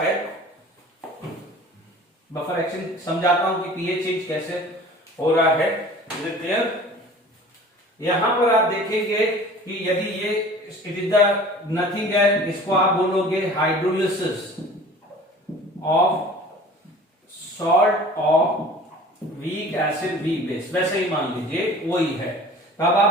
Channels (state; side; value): normal; both; correlation 0.44